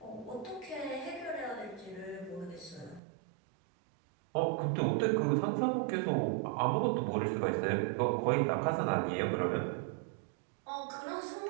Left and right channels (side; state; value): left; drops out; at 3.0 s